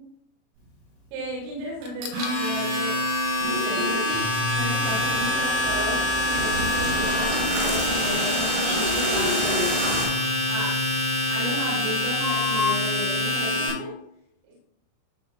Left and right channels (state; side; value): late; left; 36 ms